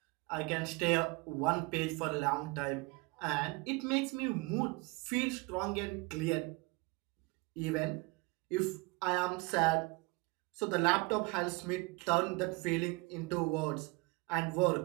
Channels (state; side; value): quieter; left; 26.4 dB